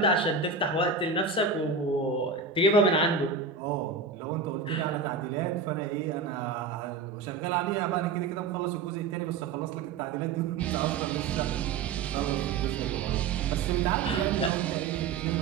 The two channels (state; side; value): quieter; left; 5.0 dB